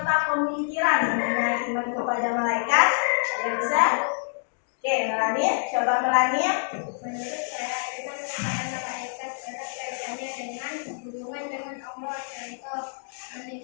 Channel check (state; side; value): silent; right; digital silence